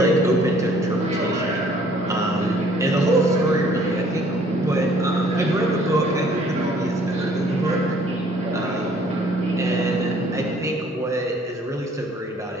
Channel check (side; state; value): both; normal; correlation 0.58